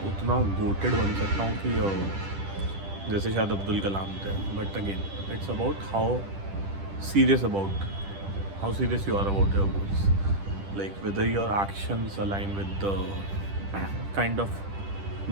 उतना गोटेड बन सकता हूँ कि जैसे शायद अब्दुल कलाम थे। But again it's about how serious you are about your goals, like whether your actions align with the kind of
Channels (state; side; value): late; left; 10 ms